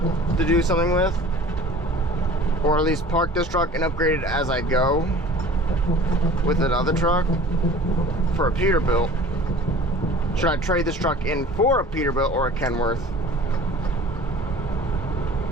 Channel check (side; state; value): both; normal; correlation 0.44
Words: to do something with? Or at least park this truck and upgrade it as I go with another truck for a Peterbilt? Should I trade this truck in for a Peterbilt or a Kenworth?